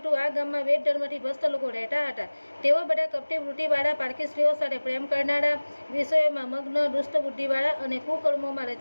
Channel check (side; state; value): both; inverted; correlation -1.00